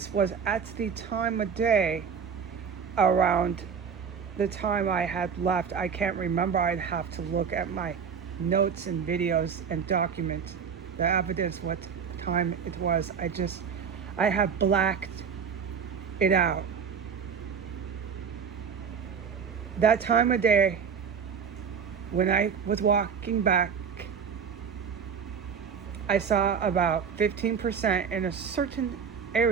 was at the time of day around the time I had left. I can't remember. I'd have to look at my notes and videos and document the evidence what time it was. I have blacked it out. That time of day, when I was walking back, I saw about 15% in a certain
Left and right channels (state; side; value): quieter; left; 6.7 dB